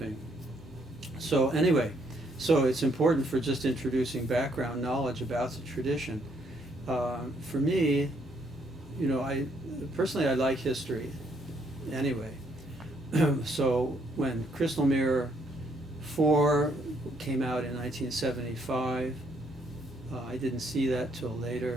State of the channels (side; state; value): both; normal; correlation 0.70